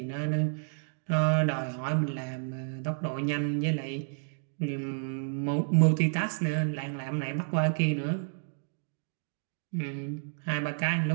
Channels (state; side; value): silent; left; digital silence